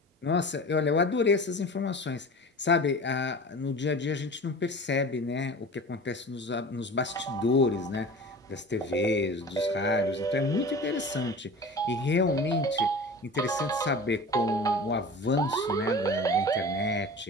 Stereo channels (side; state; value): both; normal; correlation 0.37